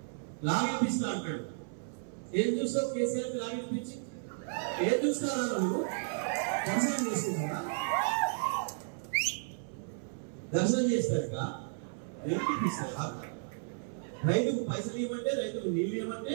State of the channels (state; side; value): silent; left; 56 dB below the other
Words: లాగిపిస్తా అంటాడు. ఏం చూస్తావు కేసీఆర్ లాగిపించి? ఏం చూస్తారా నువ్వు? దర్శనం చేసుకుంటారా? దర్శనం చేస్తాక ఏమిపిస్తారా? రైతుకు పైసలు ఇవ్వమంటే, రైతుకు నీళ్ళు ఇవ్వమంటే